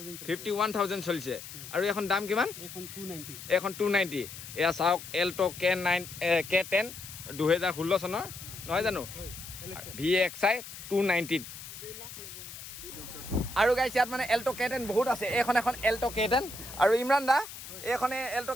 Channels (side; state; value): left; noise; hiss, 12 dB below the sound